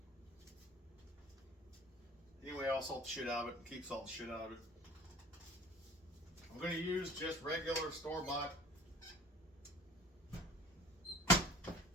Anyway, I'll salt the shit out of it and keep salting the shit out of it. I'm going to use just regular store-bought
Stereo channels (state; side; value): normal; both; correlation 0.48